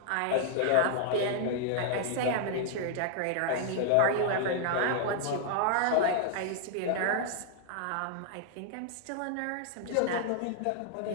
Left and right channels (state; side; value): different; both; correlation -0.01